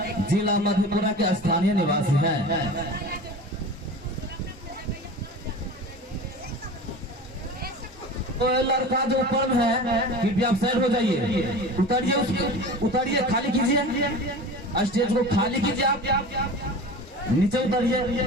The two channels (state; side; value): normal; both; correlation 0.34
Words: जिला मधेपुरा के स्थानीय निवासी हैं। तो लड़का जो ऊपर है कि आप साइड हो जाइए, उतरिए, उसके उतरिए, खाली कीजिए, स्टेज को खाली कीजिए, आप नीचे उतरिए।